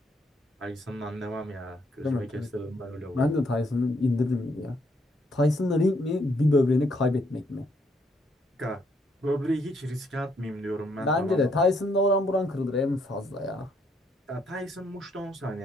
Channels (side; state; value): both; normal; correlation 0.71